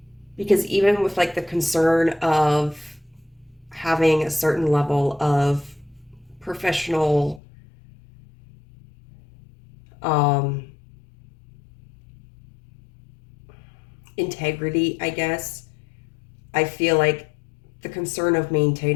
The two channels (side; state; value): right; drops out; at 7.4 s